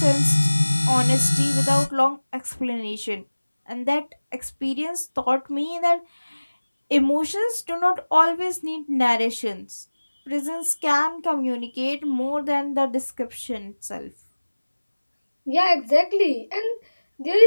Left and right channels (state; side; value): inverted; both; correlation -1.00